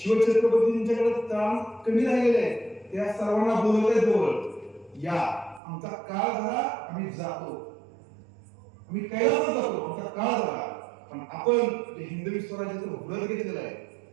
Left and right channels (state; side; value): drops out; left; at 5.6 s